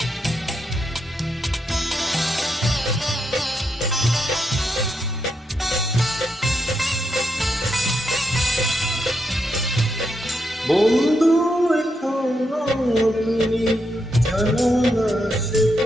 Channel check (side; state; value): both; normal; correlation 0.81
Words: বন্ধু এখনো তুমি জানো না সে